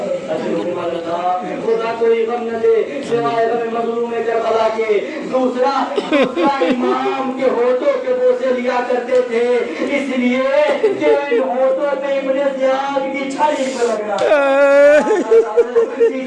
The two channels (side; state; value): both; identical; correlation 1.00